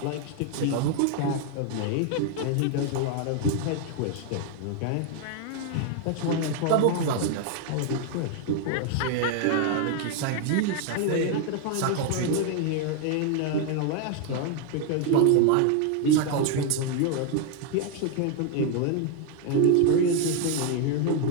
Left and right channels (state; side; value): different; both; correlation 0.00